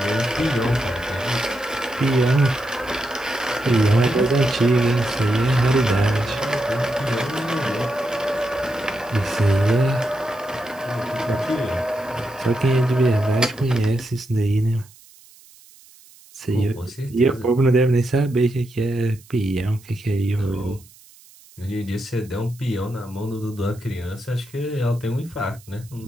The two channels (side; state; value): right; noise; hiss, 25 dB below the sound